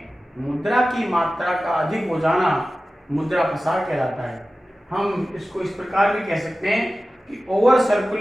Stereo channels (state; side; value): normal; both; correlation 0.95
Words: मुद्रा की मात्रा का अधिक हो जाना मुद्रा प्रसार कहलाता है। हम इसको इस प्रकार भी कह सकते हैं कि over